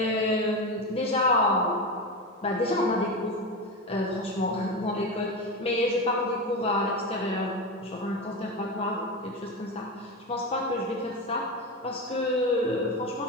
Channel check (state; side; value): normal; both; correlation 0.19